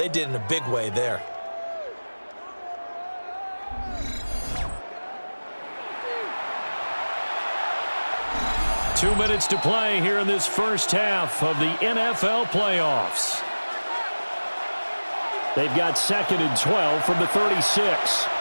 did in a big way there. Two minutes to play here in this first half of the NFL playoffs. They've got 2nd and 12 from the 36.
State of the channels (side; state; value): both; inverted; correlation -1.00